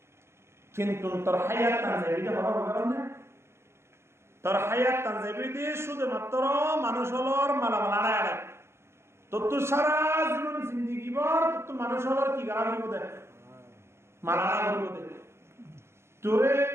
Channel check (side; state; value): left; late; 0.12 ms